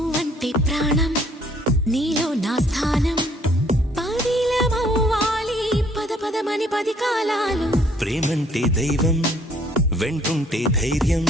ప్రాణం, నీలో నా స్థానం, పదిలమవ్వాలి పద పదమని 10 కాలాలు. ప్రేమంటే దైవం, వెంటుంటే ధైర్యం,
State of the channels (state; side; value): normal; both; correlation 0.62